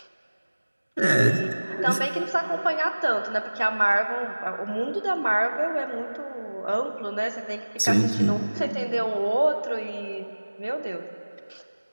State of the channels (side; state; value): both; inverted; correlation -1.00